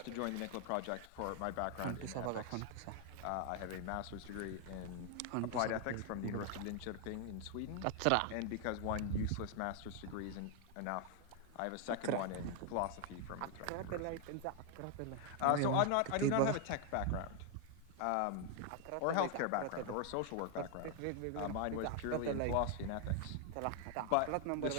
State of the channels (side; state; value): both; different; correlation 0.00